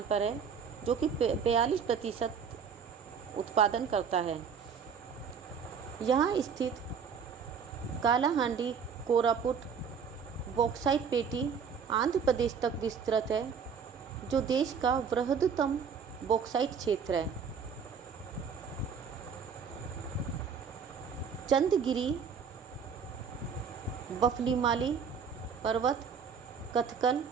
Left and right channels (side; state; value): left; quieter; 6.5 dB